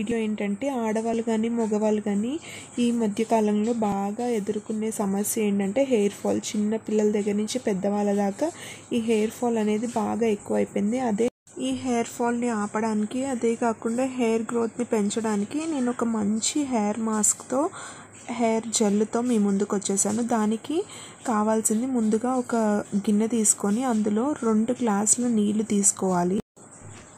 ఏంటంటే ఆడవాళ్ళు కానీ మగవాళ్ళు కానీ ఈ మధ్యకాలంలో బాగా ఎదుర్కొనే సమస్య ఏంటంటే హెయిర్ ఫాల్. చిన్న పిల్లల దగ్గర నుంచి పెద్దవాళ్ళ దాకా ఈ హెయిర్ ఫాల్ అనేది బాగా ఎక్కువైపోయింది. ఈ హెయిర్ ఫాల్ని ఆపడానికి, అదే కాకుండా హెయిర్ గ్రోత్ని పెంచడానికి నేను ఒక మంచి హెయిర్ మాస్క్తో, హెయిర్ జెల్తో మీ ముందుకు వచ్చేసాను. దానికి కావాల్సింది ముందుగా ఒక గిన్నె తీసుకొని అందులో 2 గ్లాసుల నీళ్లు తీసుకోవాలి.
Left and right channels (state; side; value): identical; both; correlation 1.00